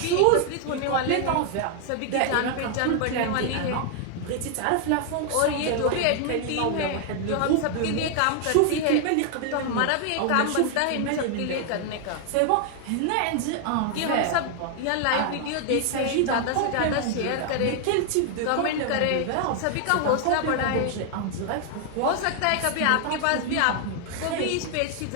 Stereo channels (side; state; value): both; different; correlation 0.00